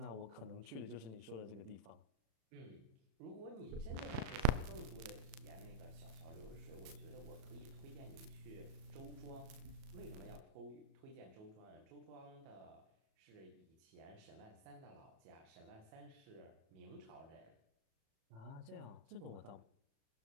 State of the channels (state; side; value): late; left; 37 ms